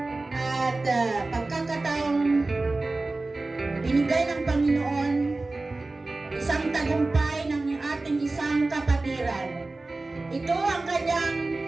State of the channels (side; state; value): left; quieter; 3.2 dB